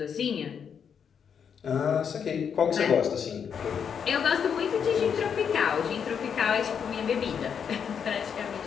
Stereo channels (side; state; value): right; quieter; 7.3 dB